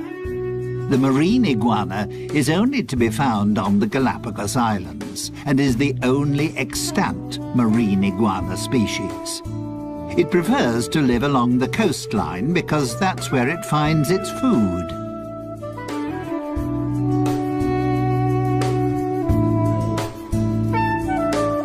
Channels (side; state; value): both; identical; correlation 1.00